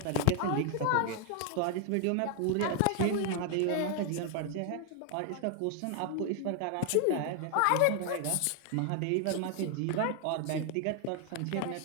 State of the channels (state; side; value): different; both; correlation 0.00